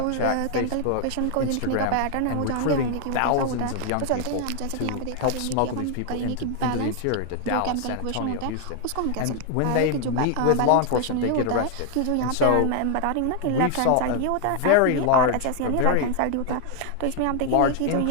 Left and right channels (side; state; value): both; different; correlation 0.00